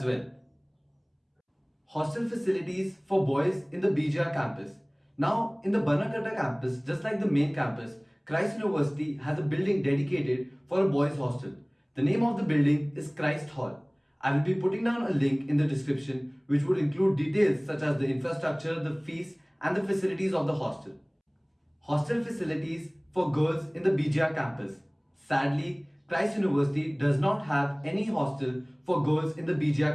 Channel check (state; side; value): identical; both; correlation 1.00